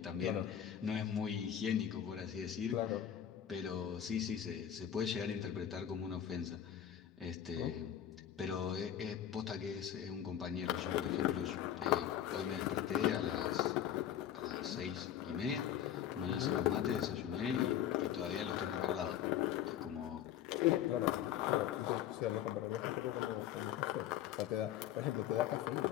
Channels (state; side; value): quieter; right; 10.2 dB